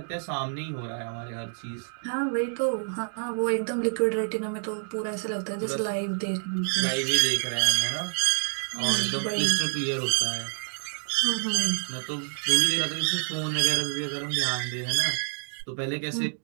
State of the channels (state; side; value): silent; left; 60 dB below the other